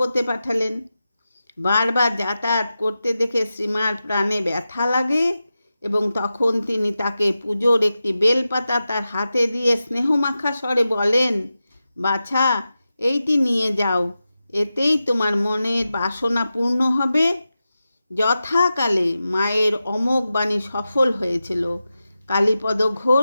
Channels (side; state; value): both; inverted; correlation -0.92